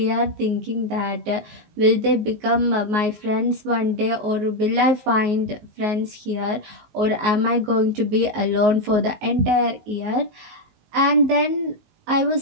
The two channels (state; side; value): late; left; 19 ms